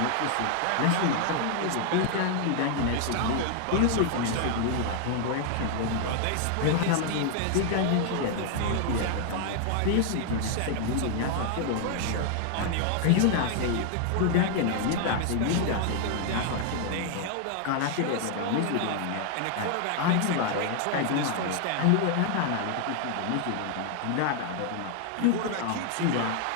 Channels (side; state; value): both; different; correlation 0.00